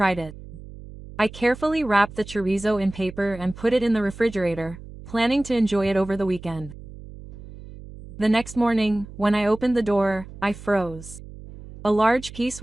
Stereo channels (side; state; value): right; noise; hum, 16 dB below the sound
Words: it. I carefully wrapped the chorizo in paper and put it in the refrigerator, planning to enjoy it over the weekend. The next morning, when I opened the door, I froze. A large piece